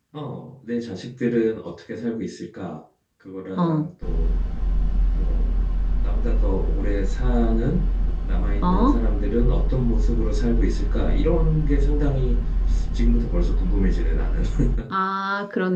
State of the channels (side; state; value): both; identical; correlation 1.00